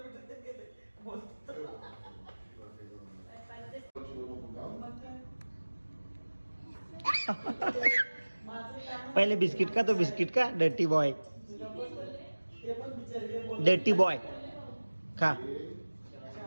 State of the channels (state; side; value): inverted; both; correlation -1.00